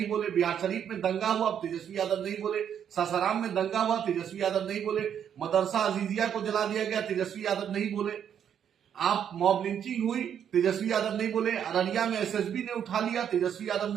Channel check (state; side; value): quieter; left; 8.8 dB